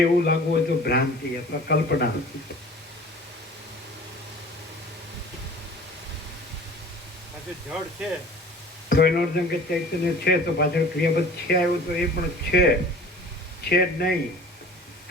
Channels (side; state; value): both; normal; correlation 0.45